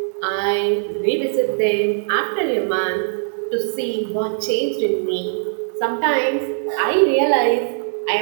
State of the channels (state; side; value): silent; left; digital silence